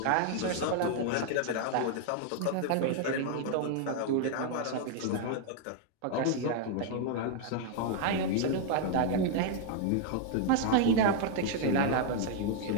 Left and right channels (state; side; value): different; both; correlation 0.00